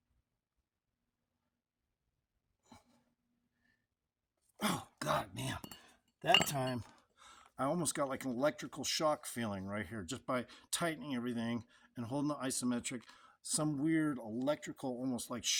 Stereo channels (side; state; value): both; identical; correlation 1.00